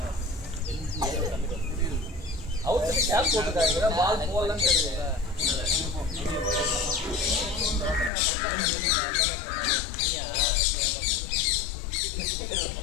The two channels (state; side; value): drops out; right; at 8.1 s